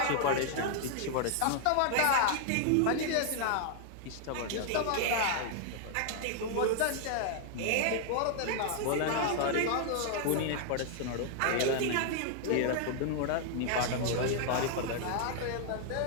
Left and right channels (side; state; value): both; different; correlation 0.00